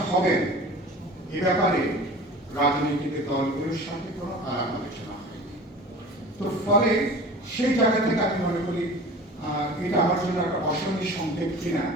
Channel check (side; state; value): both; normal; correlation 0.40